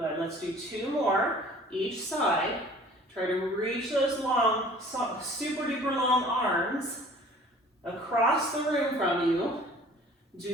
let's do 2 more each side. Try to reach those long, super duper long arms across the room from you.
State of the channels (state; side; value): normal; both; correlation 0.49